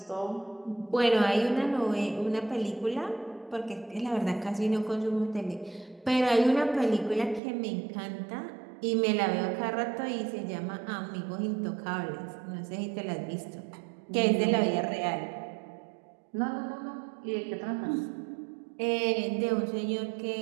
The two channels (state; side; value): drops out; left; at 7.4 s